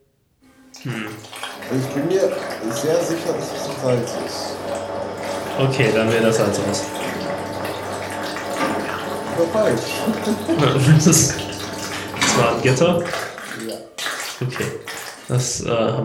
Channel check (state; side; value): identical; both; correlation 1.00